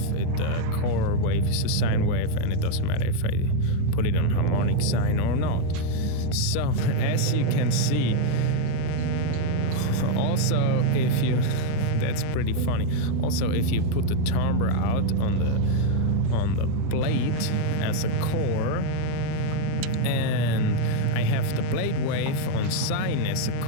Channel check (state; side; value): different; both; correlation 0.00